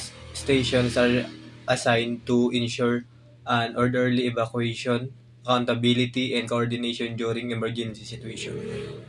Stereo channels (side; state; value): both; identical; correlation 1.00